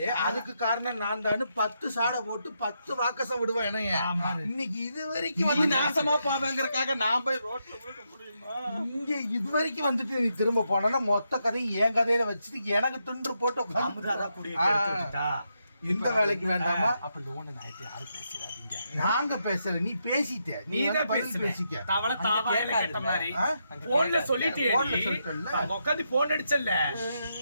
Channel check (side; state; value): both; inverted; correlation -0.82